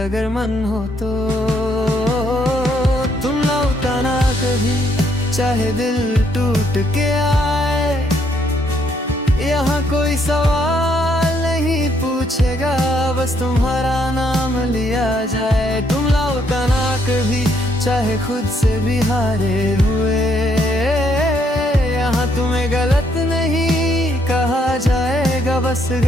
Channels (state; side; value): normal; both; correlation 0.71